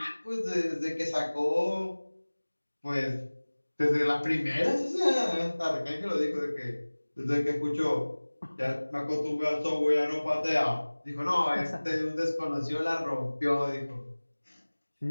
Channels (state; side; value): inverted; both; correlation -1.00